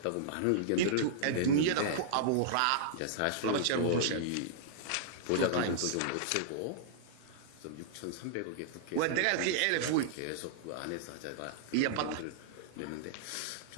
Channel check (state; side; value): different; both; correlation -0.02